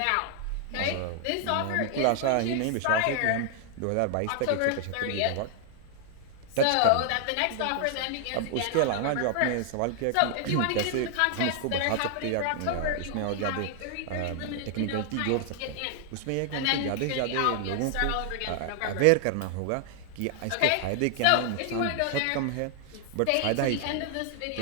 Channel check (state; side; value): different; both; correlation 0.00